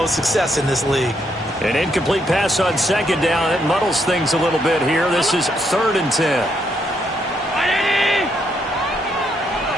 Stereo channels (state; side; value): normal; both; correlation 0.76